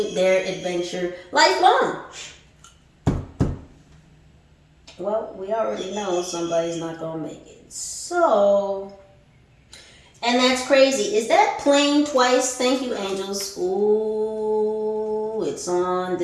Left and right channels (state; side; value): identical; both; correlation 1.00